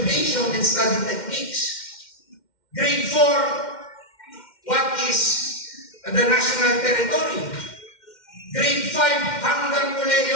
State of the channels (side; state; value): right; late; 2.1 ms